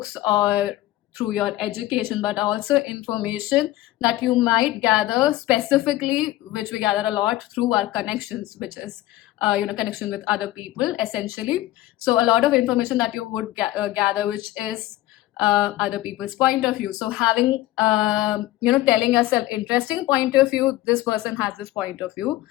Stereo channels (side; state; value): right; quieter; 16.0 dB